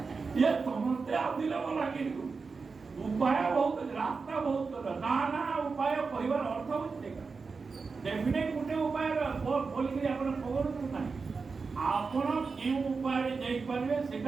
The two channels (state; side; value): quieter; left; 4.7 dB